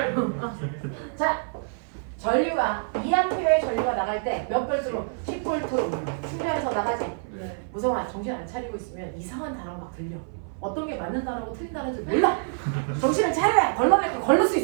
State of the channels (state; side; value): silent; left; 56 dB below the other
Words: 자, 전류가 2A의 전류가 나갈 때 몇 볼트로? 10볼트로 충전해서 나가지. 무성아 정신 안 차리고 있으면 이상한 단어가 막 들려. 어떤 게 맞는 단어고 틀린 단어인지 몰라. 정신을 차려야 걸러낼 거 걸릴 수